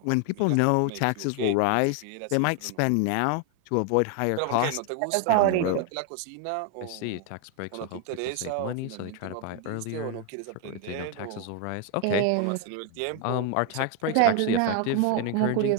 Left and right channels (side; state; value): both; different; correlation 0.01